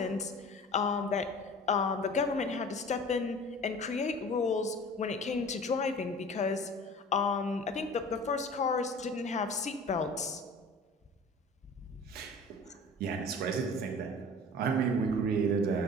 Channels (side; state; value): both; normal; correlation 0.42